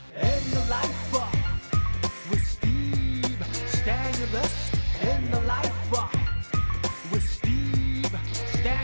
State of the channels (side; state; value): both; inverted; correlation -1.00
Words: In the life with Steve Stanulis. In the life with Steve